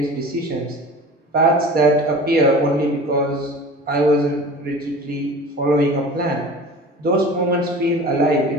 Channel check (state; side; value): normal; both; correlation 0.39